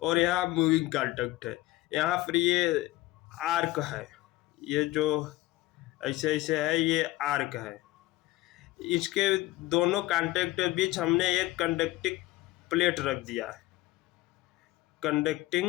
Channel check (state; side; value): quieter; right; 18.0 dB